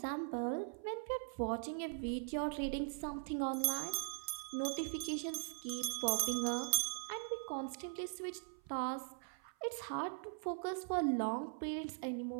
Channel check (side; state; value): left; silent; 50 dB below the other